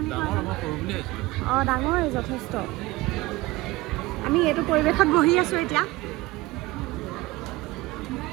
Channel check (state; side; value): quieter; left; 20.1 dB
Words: কয়। ডাঙৰেই যথেষ্ট। আমি এইটো পৰিৱেশত বহি আছোঁ এতিয়া।